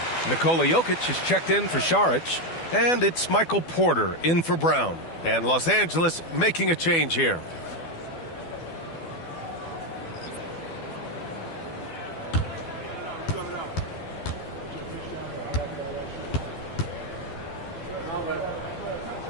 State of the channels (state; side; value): late; right; 12 ms